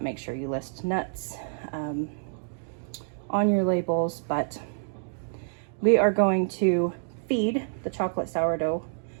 Make sure you list nuts on your labels, but we are going to feed the chocolate sourdough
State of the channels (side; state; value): left; silent; digital silence